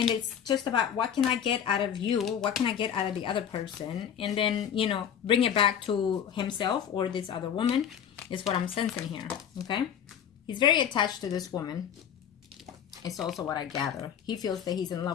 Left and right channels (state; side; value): quieter; right; 8.7 dB